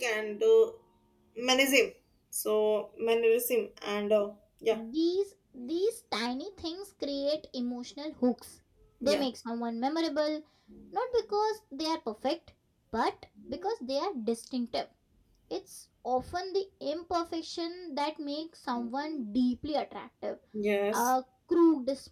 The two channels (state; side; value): identical; both; correlation 1.00